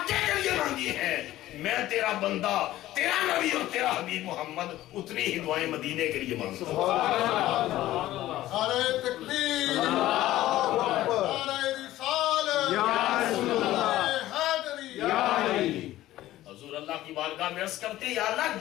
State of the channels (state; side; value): quieter; right; 15.0 dB